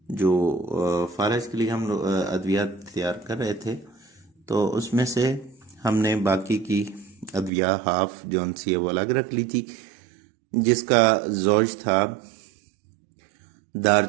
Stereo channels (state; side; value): drops out; left; at 7.5 s